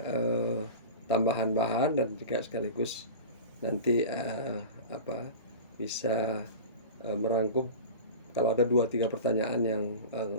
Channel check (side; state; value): both; inverted; correlation -0.32